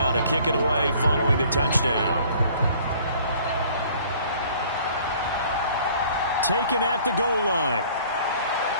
to kick it away following the touchdown. Taken at the goal line.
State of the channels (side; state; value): both; inverted; correlation -0.54